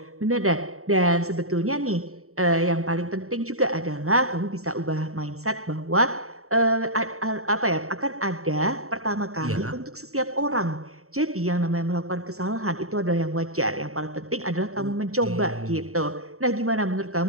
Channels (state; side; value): late; left; 0.64 ms